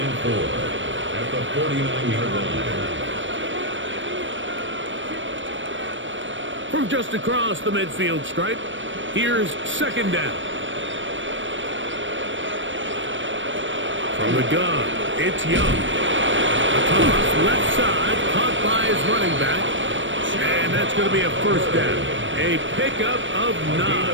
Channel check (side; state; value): left; late; 0.56 ms